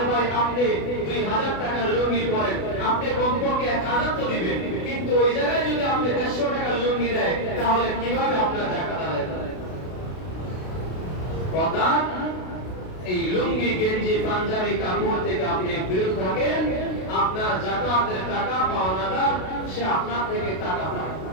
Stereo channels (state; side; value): late; right; 32 ms